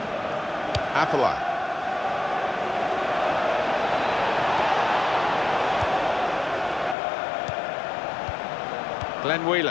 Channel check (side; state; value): right; drops out; at 7.0 s